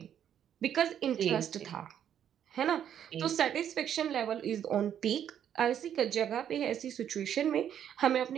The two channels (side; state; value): left; quieter; 9.6 dB